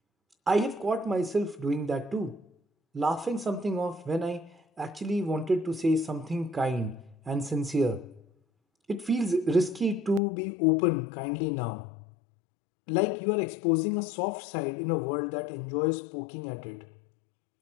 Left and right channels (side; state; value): right; drops out; at 10.2 s